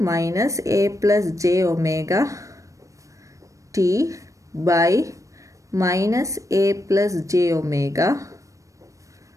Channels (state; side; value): late; left; 0.16 ms